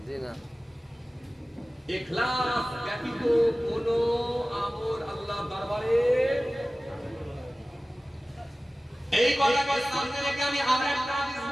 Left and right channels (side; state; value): both; normal; correlation 0.97